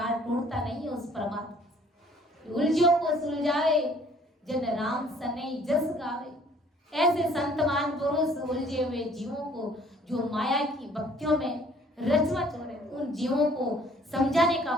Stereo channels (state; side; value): normal; both; correlation 0.57